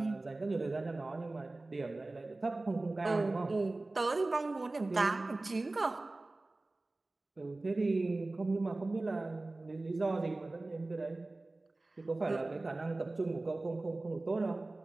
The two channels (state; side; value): quieter; left; 3.0 dB